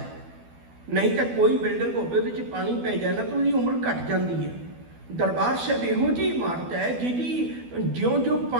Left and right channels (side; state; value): left; late; 12 ms